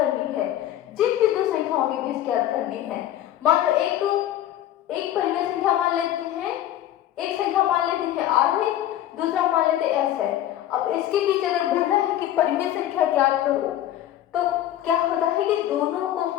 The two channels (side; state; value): right; quieter; 12.6 dB